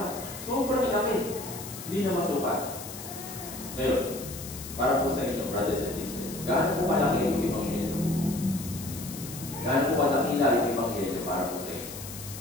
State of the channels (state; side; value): noise; left; hiss, 11 dB below the sound